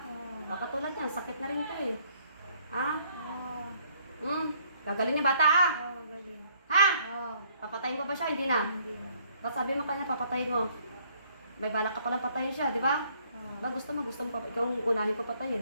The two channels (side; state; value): both; inverted; correlation -0.65